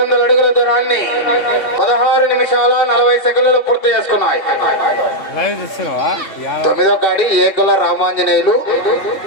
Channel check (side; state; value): right; late; 2.7 ms